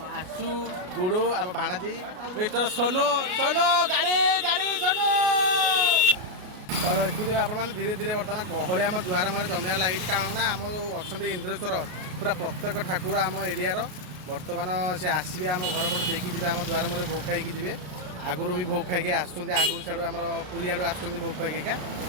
गुडू आम भाणाजी मिस्टर सोनू सोनू गाड़ी गाड़ी सोनू देखुए आप धीरे धीरे बर्तमान गहली आम दुआर मारे जमियार लगी कारण ना आम अच्छा इंद्रेश्वर पूरा प्रत्येक ठाकुर आम एरियार बर्तमान से आसवे आम घर पट देखी जी आम दुआर मारे भोग खाई जी आगुरी भी भोग खाई आसुँच आगुरी सियाड़ आम पुरी आड़ू आसुँच भोग खाई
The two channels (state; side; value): late; left; 33 ms